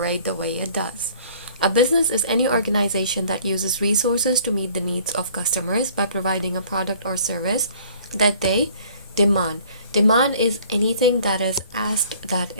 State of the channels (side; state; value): both; inverted; correlation -0.54